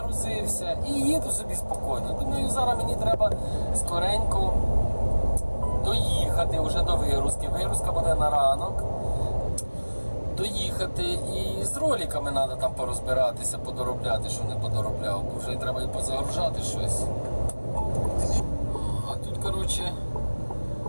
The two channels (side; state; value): both; inverted; correlation -1.00